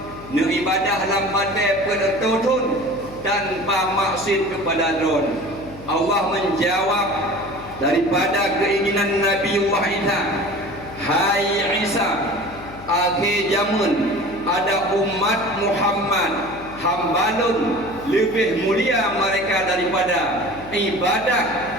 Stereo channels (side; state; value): left; noise; hum, 16 dB below the sound